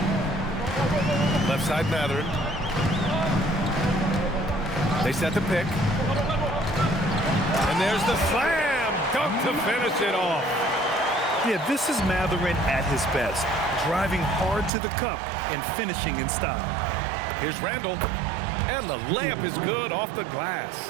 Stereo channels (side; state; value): left; drops out; at 14.7 s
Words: Left side Mathurin. They set the pick. And there's the slam dunk to finish it off. Yeah, this is Mathurin at his best. Driving hard to the cup and finishing in style. Here's Randall. And the layup is good off the glass.